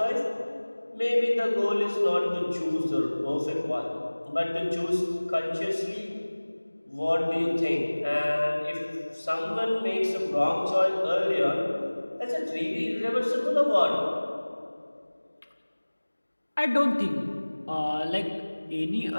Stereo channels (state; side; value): inverted; both; correlation -1.00